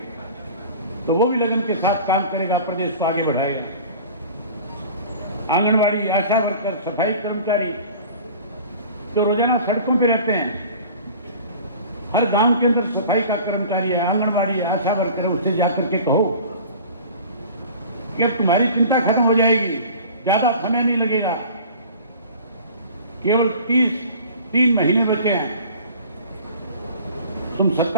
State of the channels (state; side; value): inverted; both; correlation -0.43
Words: तो वो भी लगन के साथ काम करेगा, प्रदेश को आगे बढ़ाएगा। आंगनवाड़ी, आशा वर्कर, सफाई कर्मचारी जो रोजाना सड़कों पे रहते हैं, हर गांव के अंदर सफाई का कर्मचारी है, आंगनवाड़ी है, आशा वर्कर है, उससे जाकर के कहो कि अब तुम्हारी चिंता खत्म हो जाएगी, ज्यादा समय नहीं लगेगा, केवल 3 महीने बचे हैं। तुम